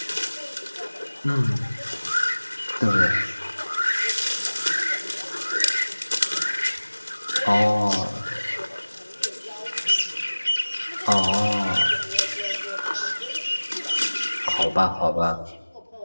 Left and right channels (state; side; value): inverted; both; correlation -1.00